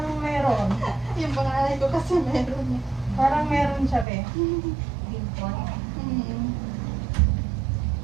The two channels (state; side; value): drops out; left; at 4.0 s